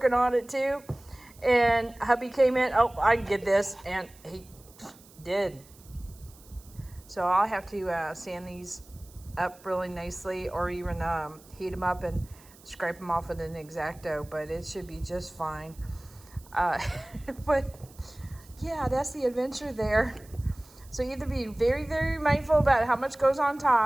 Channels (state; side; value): noise; right; hiss, 25 dB below the sound